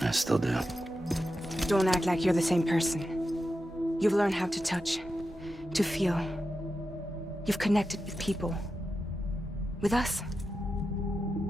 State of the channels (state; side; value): normal; both; correlation 0.90